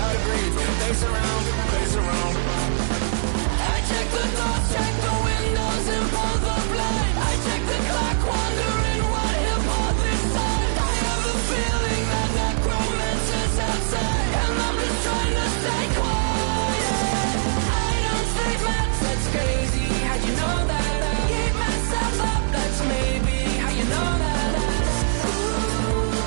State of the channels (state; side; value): silent; left; digital silence